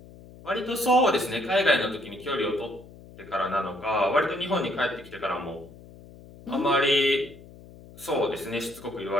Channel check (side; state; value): left; noise; hum, 20 dB below the sound